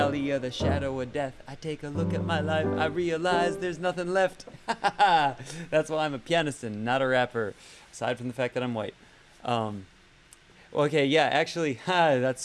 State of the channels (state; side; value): identical; both; correlation 1.00